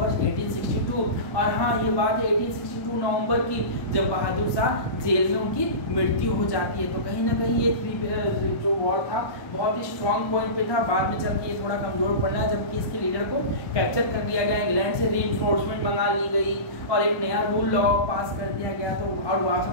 1862। और हाँ, ये बात है 1862 नवंबर की, जब बहादुर शाह जेल में उनकी मृत्यु हो जाती है। तो कहीं ना कहीं ये जो वॉर था बहुत ही स्ट्रॉन्ग पॉइंट पे था। बाद में चल के ये थोड़ा कमजोर पड़ रहा है, जबकि इसके लीडर को कैप्चर कर लिया गया, इंग्लैंड से रीइंफोर्समेंट मंगा ली गई और एक नया रूल लॉ पास कर दिया गया। तो और वहाँ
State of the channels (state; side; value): late; right; 1.2 ms